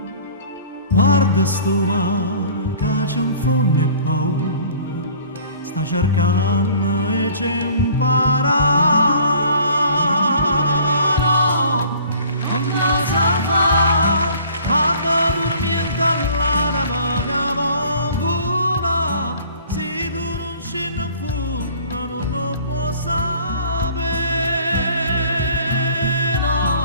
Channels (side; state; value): both; inverted; correlation -0.50